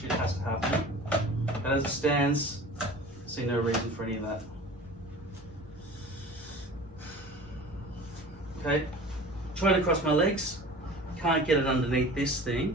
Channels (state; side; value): normal; both; correlation 0.40